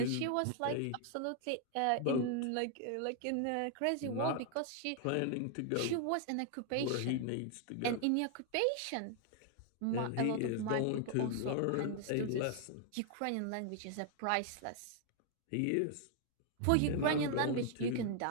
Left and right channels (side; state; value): both; different; correlation 0.00